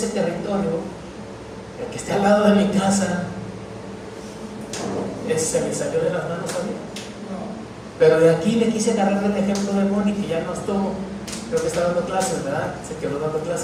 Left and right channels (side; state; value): both; identical; correlation 1.00